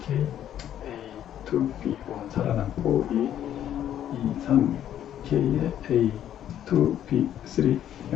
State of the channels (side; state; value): right; quieter; 10.8 dB